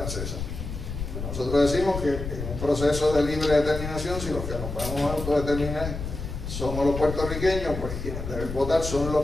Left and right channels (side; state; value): left; noise; rumble, 6 dB below the sound